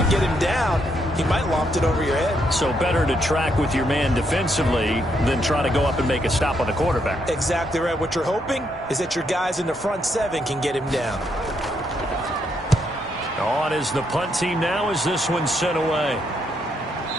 get him down, he might loft it over your head. So better to track with your man defensively than try to go up and make a stop on the quarterback. Exactly right. What you're hoping is that your guys in the front 7 can get him down. On is the punt team now as this one's sent away.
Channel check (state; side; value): normal; both; correlation 0.76